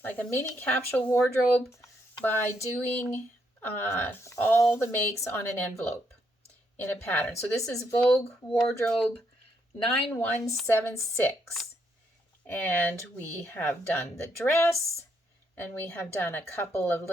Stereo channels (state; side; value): normal; both; correlation 0.75